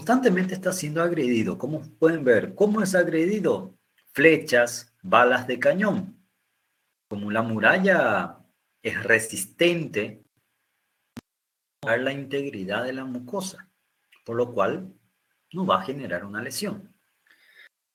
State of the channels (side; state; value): both; identical; correlation 1.00